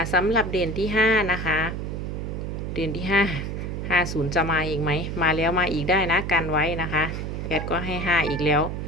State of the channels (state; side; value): noise; right; hum, 4 dB below the sound